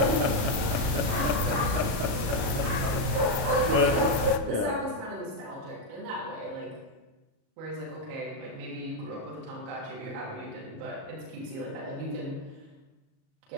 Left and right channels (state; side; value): late; left; 37 ms